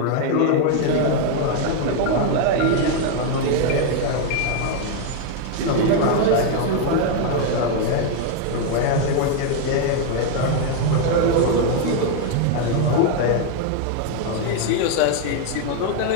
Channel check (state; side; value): different; both; correlation 0.01